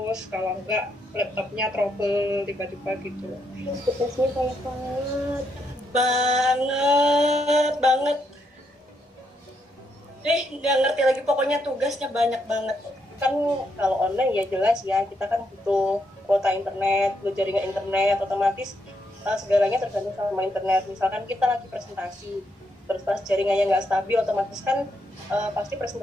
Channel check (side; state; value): both; normal; correlation 0.78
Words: kalau enggak laptopnya trouble tiba-tiba gitu. Tugasnya banyak banget. Nggak ngerti lagi, pokoknya tugasnya banyak banget. Kan kalau online ya jelas ya, kita kan butuh kuota internet, butuh jaringan internet, otomatis segalanya tergantung sama internet. Misalkan kita lagi presentasi, terus pas jaringannya nggak stabil, otomatis kan pasti